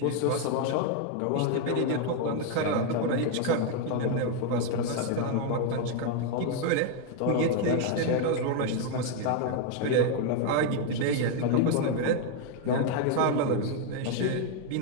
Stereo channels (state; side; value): different; both; correlation 0.01